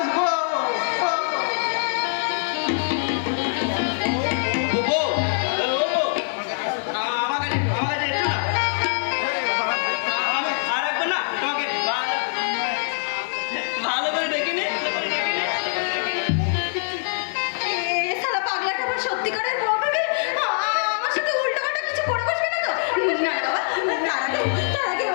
ভালো করে ডেকে নে। এ শালা পাগলাটা আবার সত্যিকারের বউ ভেবে আমার সাথে উল্টোপাল্টা কিছু করে বসবে না তো? না বাবা, তার আগে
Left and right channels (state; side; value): silent; right; 63 dB below the other